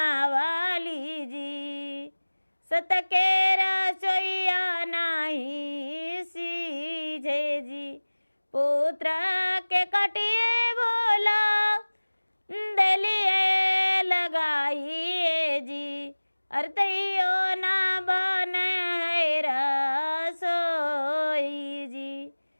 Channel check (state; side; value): inverted; both; correlation -1.00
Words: जी, सत के रसोईया नाही सीझे जी। पुत्र के कटिए भोला दलिए लगाई अरे तैयो ना बने है रसोई जी,